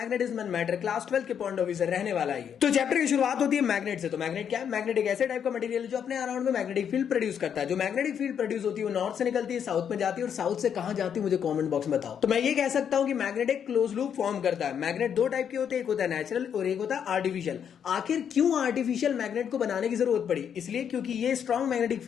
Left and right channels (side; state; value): right; quieter; 8.2 dB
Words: एंड मैटर क्लास 12 के पॉइंट ऑफ व्यू से रहने वाला है। तो चैप्टर की शुरुआत होती है मैग्नेट से। तो मैग्नेट क्या है? मैग्नेट एक ऐसे टाइप का मटेरियल है जो अपने अराउंड में मैग्नेटिक फील्ड प्रोड्यूस करता है। जो मैग्नेटिक फील्ड प्रोड्यूस होती है वो नॉर्थ से निकलती है, साउथ में जाती है। और साउथ से कहां जाती है मुझे कॉमेंट बॉक्स में बताओ। तो मैं ये कह सकता हूं कि मैग्नेट एक क्लोज लूप फॉर्म करता है। मैग्नेट दो टाइप के होते हैं, एक होता है नेचुरल और एक होता है आर्टिफिशियल। आखिर क्यों आर्टिफिशियल मैग्नेट को बनाने की जरूरत पड़ी? इसलिए क्योंकि ये स्ट्रॉन्ग मैग्नेटिक